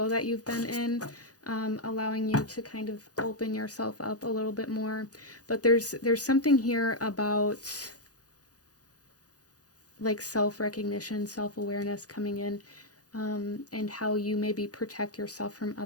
that you've been in, allowing you to kind of open yourself up a little bit more. But there's something here about like self-recognition, self-awareness coming in, and how you maybe protect yourself from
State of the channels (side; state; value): right; late; 0.67 ms